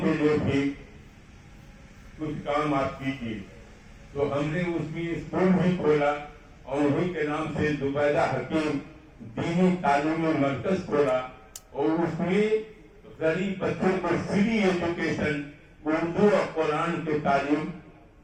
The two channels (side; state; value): both; identical; correlation 1.00